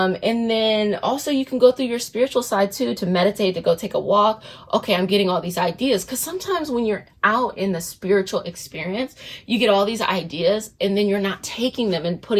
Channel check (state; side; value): identical; both; correlation 1.00